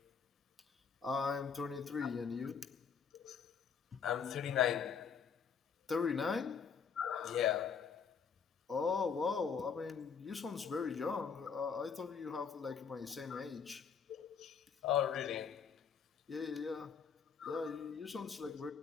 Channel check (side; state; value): right; quieter; 6.5 dB